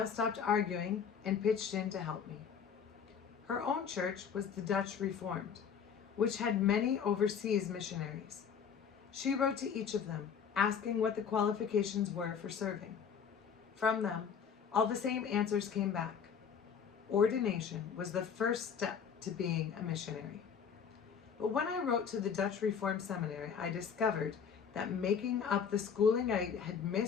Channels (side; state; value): right; quieter; 7.0 dB